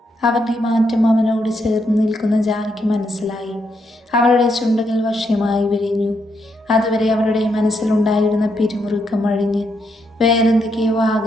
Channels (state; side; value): normal; both; correlation 0.78